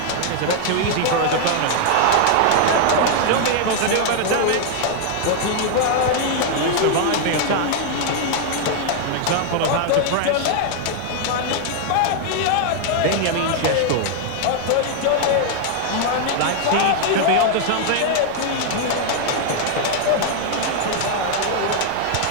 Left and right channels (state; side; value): different; both; correlation 0.00